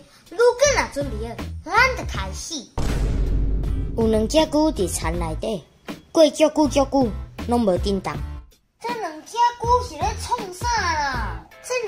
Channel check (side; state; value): both; identical; correlation 1.00